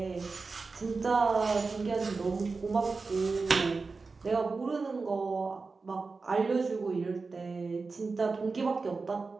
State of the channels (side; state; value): left; quieter; 4.2 dB